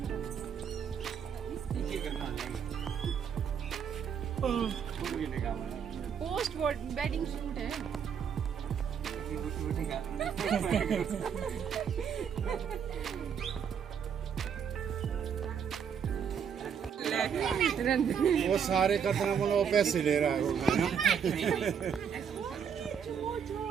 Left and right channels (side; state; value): left; quieter; 7.5 dB